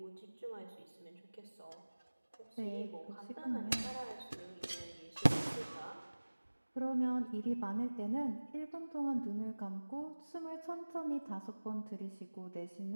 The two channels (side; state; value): both; inverted; correlation -1.00